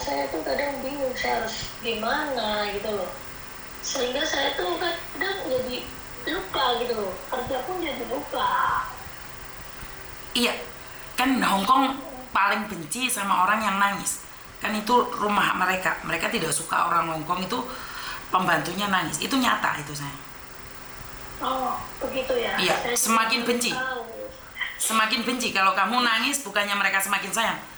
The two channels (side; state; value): both; identical; correlation 1.00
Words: tuh kadang bingung saya harus gimana gitu loh, sehingga saya tuh kadang jadi lupa gitu loh, kerja pun jadi lupa. Iya, kan Hongkong paling benci sama orang yang nangis. Kan itu rumah mereka tidak suka orang Hongkong itu pembantunya nangis. Itu nyata itu, saya. Oh, begitu ya. Iya, semakin benci. Semakin benci. Kalau kamu nangis, bukannya mereka semakin sayang,